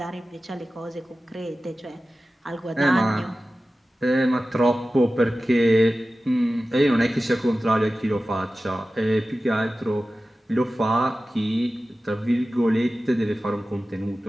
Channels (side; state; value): both; normal; correlation 0.95